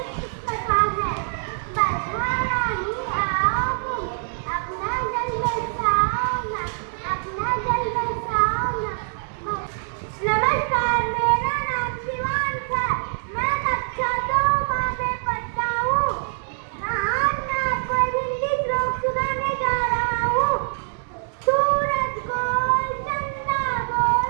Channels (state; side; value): silent; left; digital silence